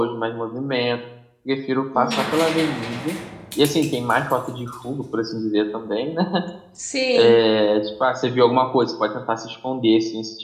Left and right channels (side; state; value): both; identical; correlation 1.00